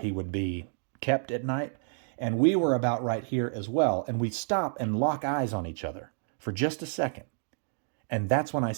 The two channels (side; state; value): left; silent; digital silence